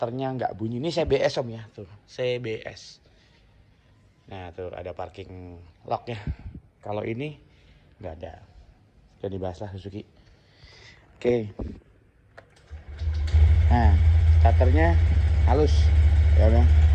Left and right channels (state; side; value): identical; both; correlation 1.00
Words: nggak bunyi. Ini CBS Om ya, tuh CBS. Nah tuh ada parking lock-nya. Kalau ini nggak ada. Jadi dibahas lah Suzuki. Oke. Nah starternya halus, ya Bang.